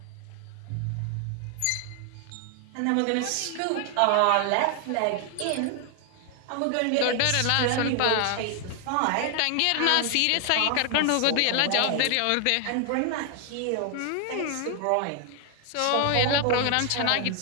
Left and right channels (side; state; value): both; different; correlation 0.00